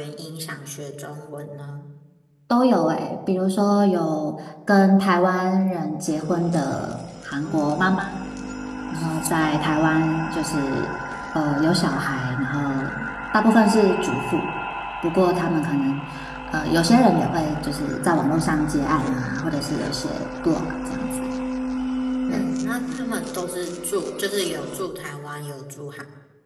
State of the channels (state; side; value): identical; both; correlation 1.00